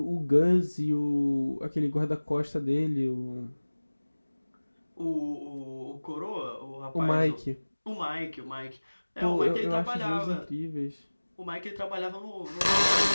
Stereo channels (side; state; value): both; inverted; correlation -1.00